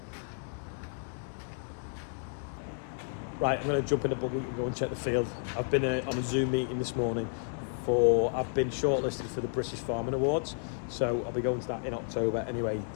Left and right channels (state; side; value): silent; right; digital silence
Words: Right, I'm going to jump in the buggy and go and check the field. I've been on a Zoom meeting this morning I've been shortlisted for the British Farming Awards, so I'll be going to that in October. Anyway,